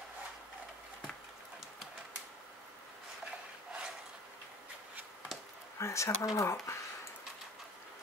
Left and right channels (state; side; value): normal; both; correlation 0.43